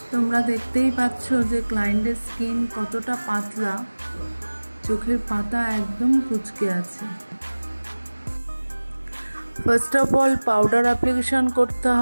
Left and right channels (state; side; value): inverted; both; correlation -1.00